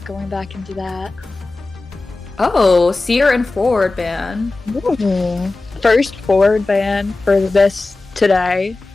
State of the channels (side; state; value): right; quieter; 3.3 dB